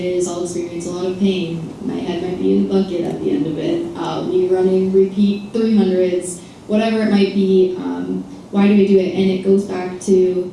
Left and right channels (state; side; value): identical; both; correlation 1.00